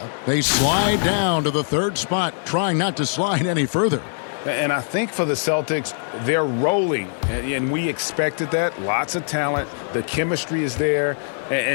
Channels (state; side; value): silent; right; digital silence